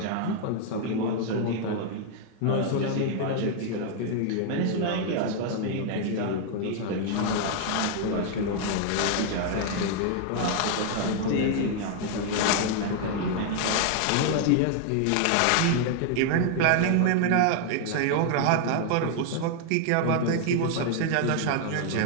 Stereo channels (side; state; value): both; different; correlation 0.00